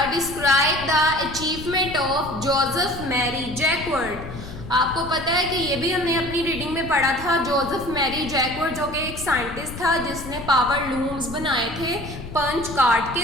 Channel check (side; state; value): left; noise; rumble, 11 dB below the sound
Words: describe the achievement of Joseph Marie Jacquard. आपको पता है कि ये भी हमने अपनी रीडिंग में पढ़ा था। जोसेफ मैरी जैकवर्ड जो कि एक साइंटिस्ट था जिसने पावर लूम्स बनाए थे पंच कार्ड